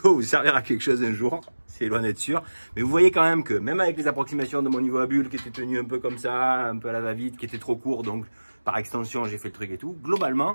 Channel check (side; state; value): both; inverted; correlation -1.00